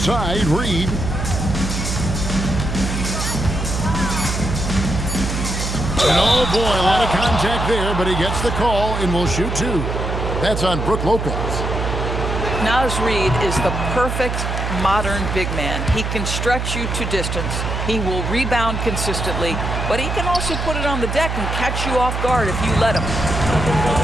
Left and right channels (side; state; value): right; noise; hum, 3 dB below the sound